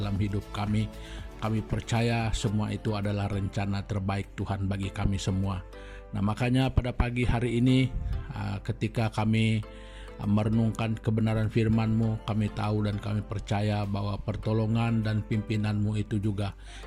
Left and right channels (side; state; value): both; identical; correlation 1.00